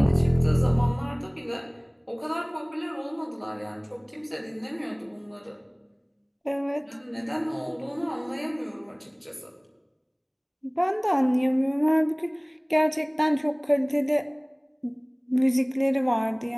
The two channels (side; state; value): both; identical; correlation 1.00